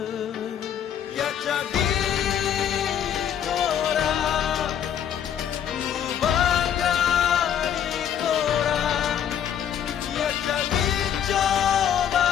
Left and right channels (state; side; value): quieter; right; 9.3 dB